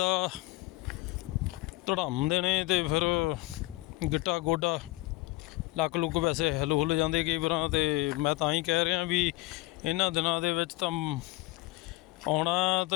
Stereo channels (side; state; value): right; quieter; 19.9 dB